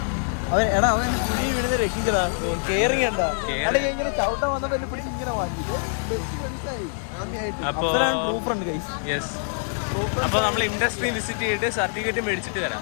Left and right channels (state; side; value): silent; right; digital silence